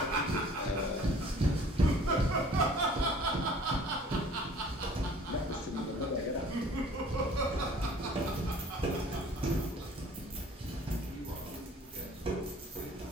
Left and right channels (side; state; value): both; normal; correlation 0.51